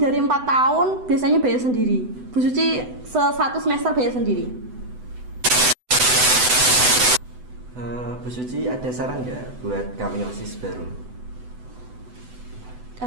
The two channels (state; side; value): late; left; 8.0 ms